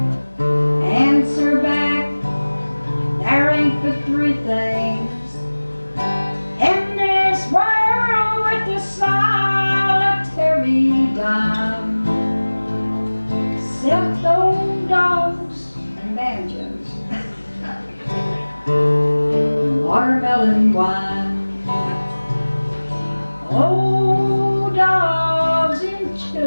answer back. There ain't but three things in this world with the solitary dime, except old dogs and banjos, and watermelon wine. Old dogs and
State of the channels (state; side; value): inverted; both; correlation -1.00